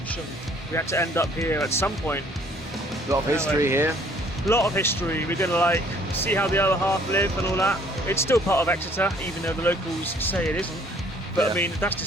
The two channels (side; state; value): both; normal; correlation 0.59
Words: We had to end up here at some point. A lot of history here. A lot of history. We're going to see how the other half live and all that. It's still part of Exeter, even though the locals say it isn't. But yeah. I mean, that's